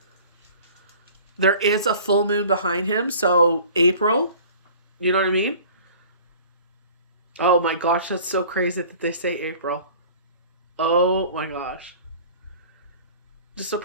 There is a full moon behind him, so April, you know what I mean? Oh my gosh, that's so crazy that they say April. Oh my gosh. Just a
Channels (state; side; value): inverted; both; correlation -0.46